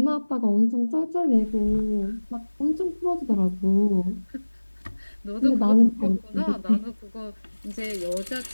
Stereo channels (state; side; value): inverted; both; correlation -1.00